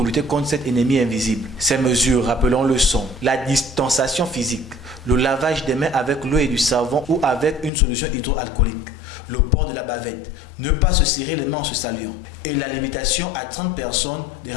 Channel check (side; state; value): right; drops out; at 7.7 s